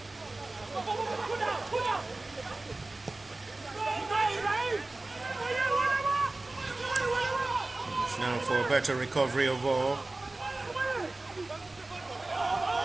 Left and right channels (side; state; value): left; quieter; 3.0 dB